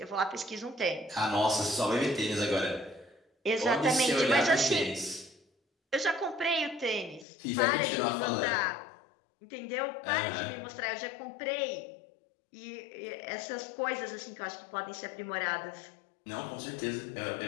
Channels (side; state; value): right; drops out; at 7.2 s